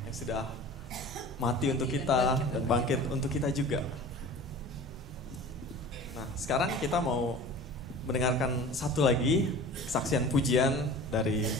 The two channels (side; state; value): both; normal; correlation 0.39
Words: yang sudah mati untuk kita dan bangkit untuk kita juga. Nah, sekarang kita mau mendengarkan satu lagi kesaksian pujian dari